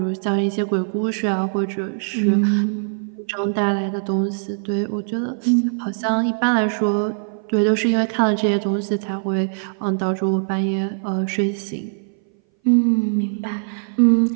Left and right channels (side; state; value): left; silent; 60 dB below the other